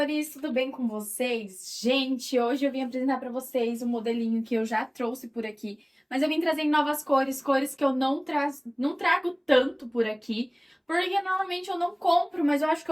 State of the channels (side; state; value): both; identical; correlation 1.00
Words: tudo bem com vocês? Gente, hoje eu vim apresentar para vocês um modelinho que eu já trouxe por aqui, mas eu vim trazer em novas cores, cores que eu não trago tanto por aqui, porque normalmente eu não compro, mas eu acho que